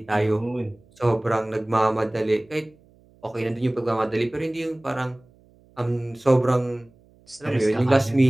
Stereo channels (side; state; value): right; noise; hum, 30 dB below the sound